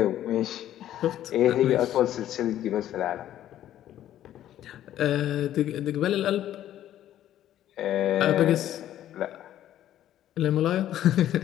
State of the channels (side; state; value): right; quieter; 12.1 dB